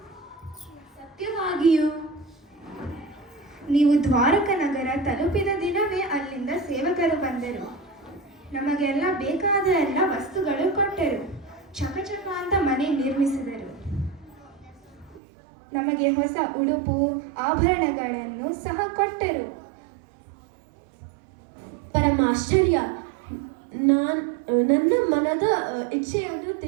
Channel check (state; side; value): drops out; left; at 15.2 s